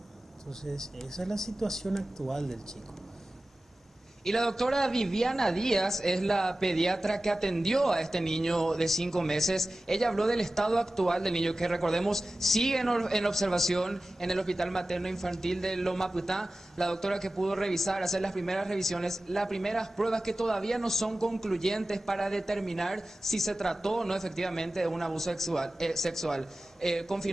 Entonces esa es la situación actual del chico. Y la doctora Viviana Díaz es la pediatra que atendió a este niño de 5 meses. Ella habló del estado actual del niño, que recordemos sigue en observación en el Hospital Materno Infantil de Loma Prietá. La doctora que pudo revisar, hacer las primeras revisiones, las primeras pruebas que todavía no son concluyentes para determinar si se trató o no efectivamente de un abuso sexual.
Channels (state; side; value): normal; both; correlation 0.96